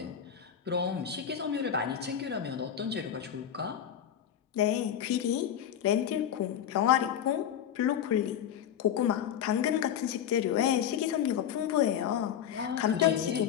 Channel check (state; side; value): quieter; right; 9.4 dB